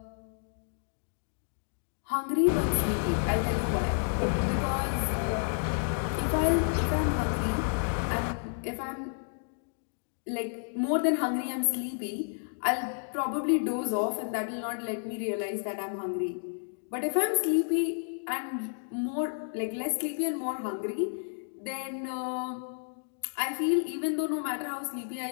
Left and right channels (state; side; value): silent; right; digital silence